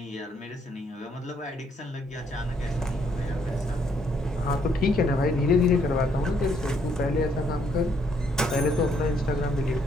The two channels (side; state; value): both; normal; correlation 0.70